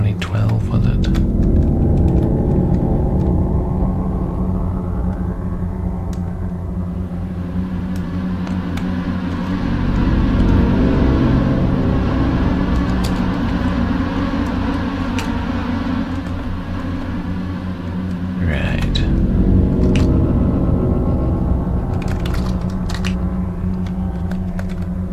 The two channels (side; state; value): both; identical; correlation 1.00